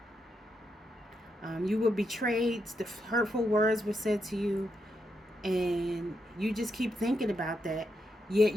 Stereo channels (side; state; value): both; normal; correlation 0.82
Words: You were betrayed, the hurtful words were said to you, and you just keep thinking about that. Yet